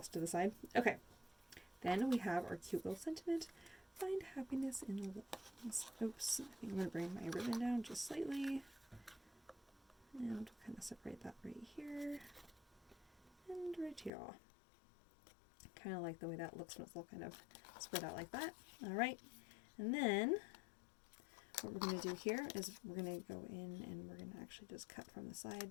to the side. Okay, then we have our cute little sentiment. Find happiness in the little things. Oops, I think I'm going to bring my ribbon down just slightly. And kind of separate that right here. And right here. Kind of like the way that looks when it's all kind of spread out like that. Alright, and then what we're going to do here is we're going to go in and we're going to actually just cut from the side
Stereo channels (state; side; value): drops out; right; at 14.1 s